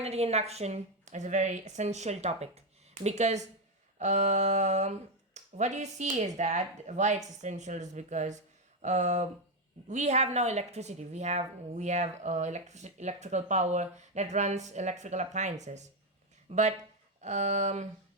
induction is a very essential topic because um, what you see is that why it's essential is because we have now electricity. We have electrical power that runs electrical appliances, but um,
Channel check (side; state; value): both; normal; correlation 0.06